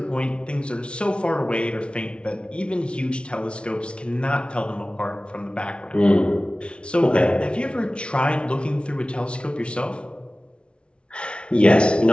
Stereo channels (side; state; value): right; late; 0.058 ms